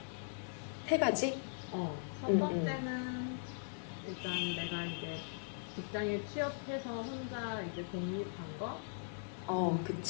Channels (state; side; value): silent; right; digital silence